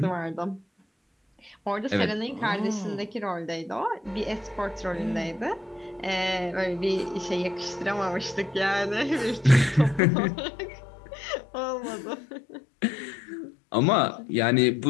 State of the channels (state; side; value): drops out; right; at 10.0 s